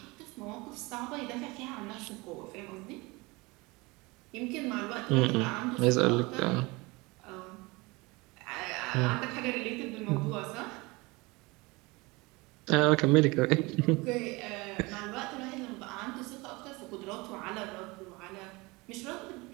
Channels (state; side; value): quieter; left; 24.3 dB